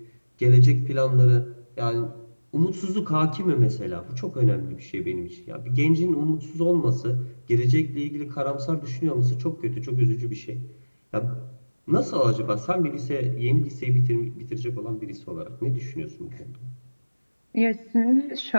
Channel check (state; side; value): inverted; both; correlation -1.00